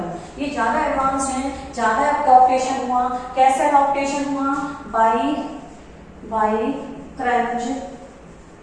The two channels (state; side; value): identical; both; correlation 1.00